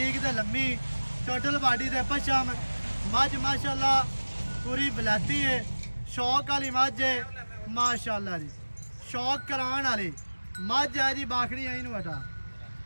ਤੇ ਲੰਮੀ, ਟੋਟਲ ਬਾਡੀ ਦੇ ਪਛਮ। ਮੱਝ ਮਾਸ਼ਾਅੱਲਾ ਪੂਰੀ ਬਲਾਤੀ ਹੈ, ਸ਼ੌਕ ਵਾਲੀ ਮੱਝ ਹੈ ਮਾਸ਼ਾਅੱਲਾ ਜੀ। ਸ਼ੌਕ ਕਰਾਉਣ ਵਾਲੀ ਮੱਝ ਹੈ ਜੀ। ਬਾਖੜੀ ਆਈ ਨੂੰ ਹਟਾ,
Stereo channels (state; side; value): inverted; both; correlation -1.00